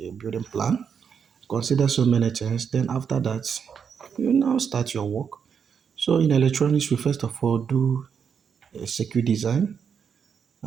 plan, consider so many things. Then after that, you now start your work. So in electronics, we first of all do a circuit design,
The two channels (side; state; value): left; quieter; 6.9 dB